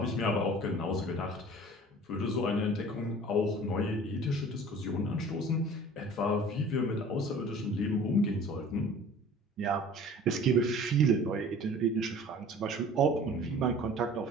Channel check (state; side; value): normal; both; correlation 0.46